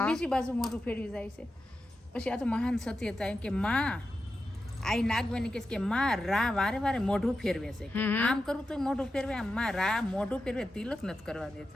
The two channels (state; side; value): normal; both; correlation 0.90